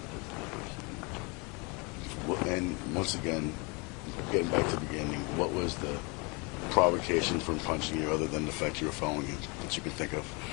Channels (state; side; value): quieter; right; 29.9 dB